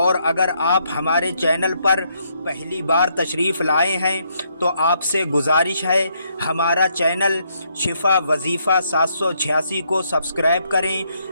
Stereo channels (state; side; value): inverted; both; correlation -0.74